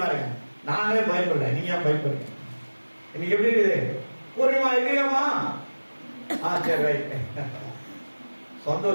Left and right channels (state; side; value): inverted; both; correlation -1.00